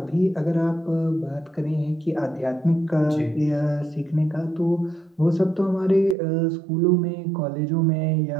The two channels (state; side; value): drops out; left; at 6.2 s